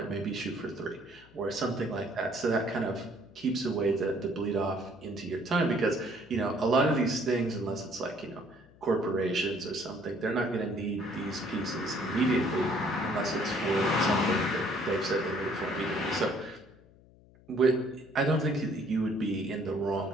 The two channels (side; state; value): left; noise; hum, 25 dB below the sound